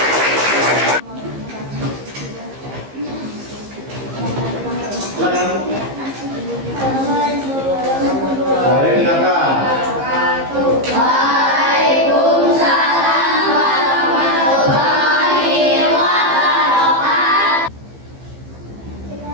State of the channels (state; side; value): late; left; 15 ms